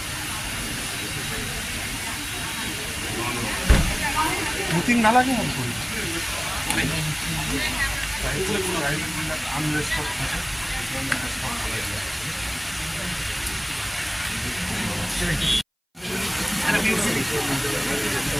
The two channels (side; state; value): both; identical; correlation 1.00